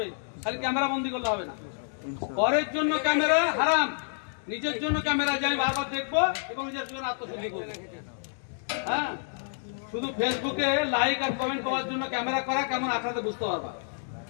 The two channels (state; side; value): silent; right; digital silence